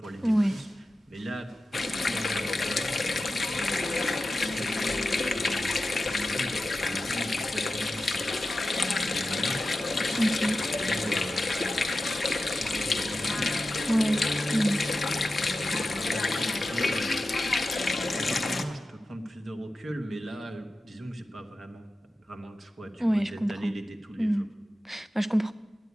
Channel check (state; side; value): normal; both; correlation 0.93